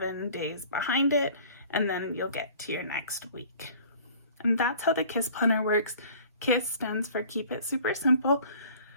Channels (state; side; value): inverted; both; correlation -0.49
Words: days behind it, and then you'll get to your next week. And that's how the KISS planner works. KISS stands for Keep It Super Simple.